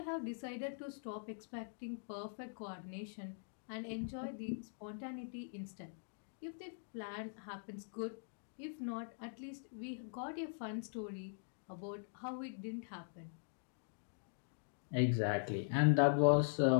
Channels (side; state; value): right; silent; digital silence